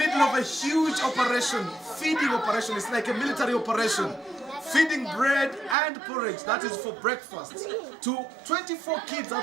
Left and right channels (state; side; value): drops out; left; at 5.8 s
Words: of a huge operation, feeding operation. It's like a military operation. Feeding bread and porridge, that is for breakfast, to 24 kids